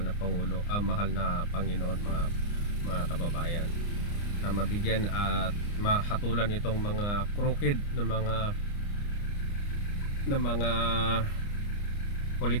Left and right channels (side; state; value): right; late; 29 ms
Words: na Pangulo, mahal na Panginoon mga kababayan, na mabigyan at mahatulan itong mga crooked na mga